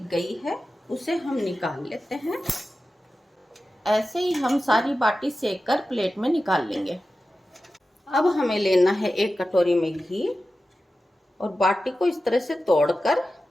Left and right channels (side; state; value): both; normal; correlation 0.93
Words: गई है उसे हम निकाल लेते हैं। ऐसे ही हम सारी बाटी सेक कर प्लेट में निकाल लेंगे। अब हमें लेना है एक कटोरी में घी और बाटी को इस तरह से तोड़कर